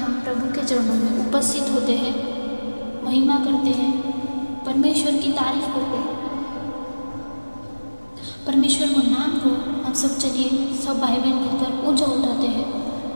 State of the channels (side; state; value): both; inverted; correlation -1.00